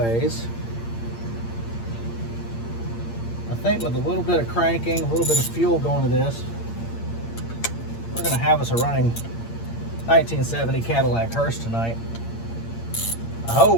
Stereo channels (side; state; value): right; late; 8.7 ms